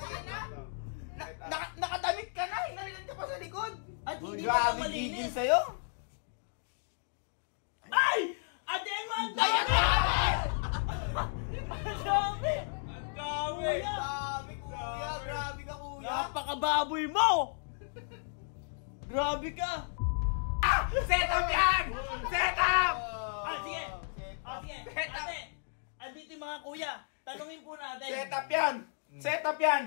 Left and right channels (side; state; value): right; silent; digital silence